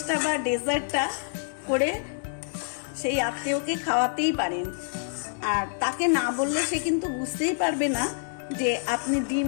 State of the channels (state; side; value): silent; right; 60 dB below the other